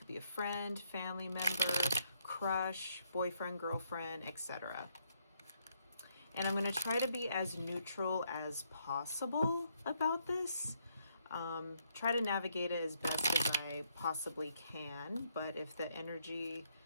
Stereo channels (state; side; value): inverted; both; correlation -0.75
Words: be a friend, family member, crush, boyfriend, girlfriend, etc. And I'm going to try to be as neutral as possible about this. Try to navigate it as best as I possibly can. But if the energy